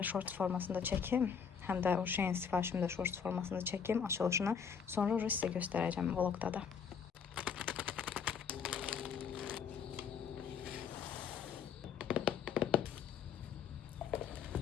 short formasında çəkim. Həm də o şeyin sifarişimi də short formasında çəkim, açılışını. Sonra sizə göstərəcəm vlogda da.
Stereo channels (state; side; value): quieter; right; 6.8 dB